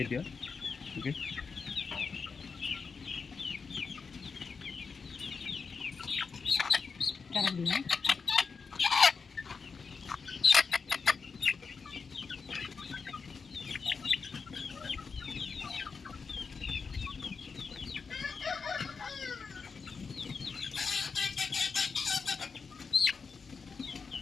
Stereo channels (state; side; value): quieter; right; 5.2 dB